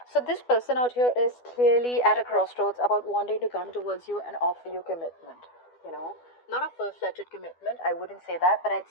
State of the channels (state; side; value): late; right; 12 ms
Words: So this person out here is clearly at a crossroads about wanting to come towards you and offer you commitment. You know, not a full-fledged commitment. I wouldn't say that, but I'd